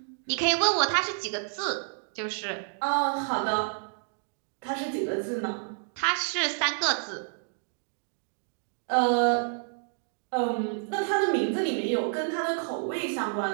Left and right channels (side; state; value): left; silent; digital silence